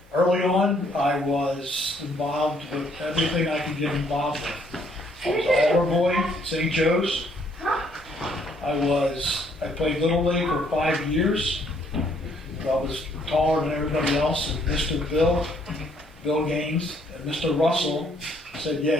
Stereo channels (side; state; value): both; normal; correlation 0.67